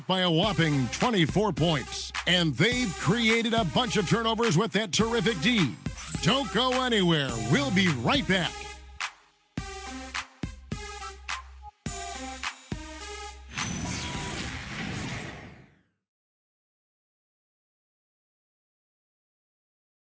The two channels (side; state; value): both; identical; correlation 1.00